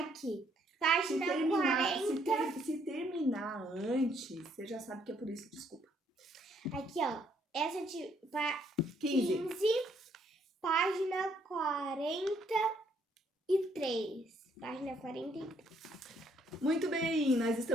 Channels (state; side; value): normal; both; correlation 0.69